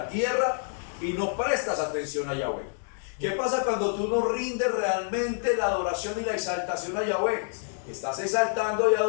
tierra y no prestas atención a Yahweh? ¿Qué pasa cuando tú no rindes realmente la adoración y la exaltación a Yahweh? Estás exaltando y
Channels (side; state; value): right; silent; digital silence